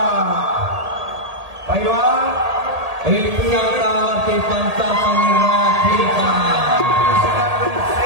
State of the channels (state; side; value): late; left; 1.8 ms